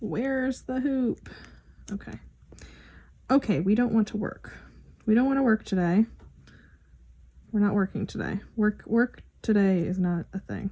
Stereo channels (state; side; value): identical; both; correlation 1.00